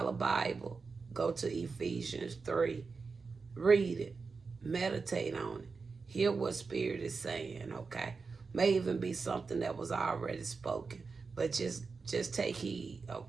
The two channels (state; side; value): quieter; left; 4.6 dB